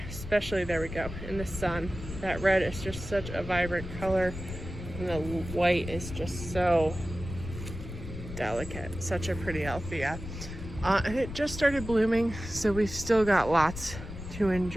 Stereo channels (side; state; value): left; noise; rumble, 10 dB below the sound